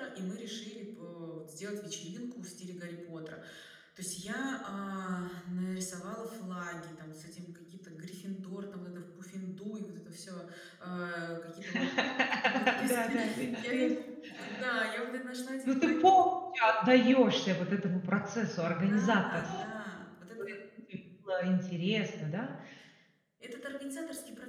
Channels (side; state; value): both; identical; correlation 1.00